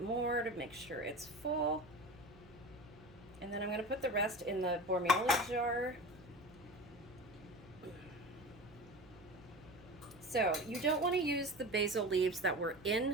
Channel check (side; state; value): right; noise; hum, 22 dB below the sound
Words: more to make sure it's full. And then I'm going to put the rest in the Bormioli jar. So you don't want to use the basil leaves that were